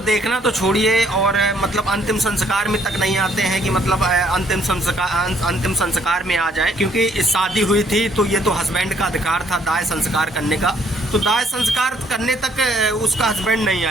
देखना तो छोड़िए, और मतलब अंतिम संस्कार में तक नहीं आते हैं कि मतलब अंतिम संस्कार में आ जाए, क्योंकि शादी हुई थी तो ये तो हस्बैंड का अधिकार था दाह संस्कार करने का। तो दाह संस्कार करने तक उसका हस्बैंड नहीं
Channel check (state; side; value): normal; both; correlation 0.65